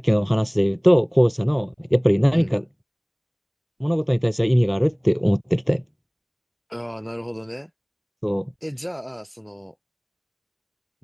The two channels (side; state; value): both; identical; correlation 1.00